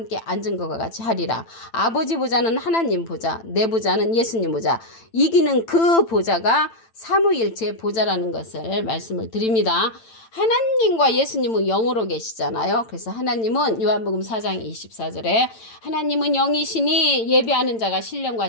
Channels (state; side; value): late; right; 8.9 ms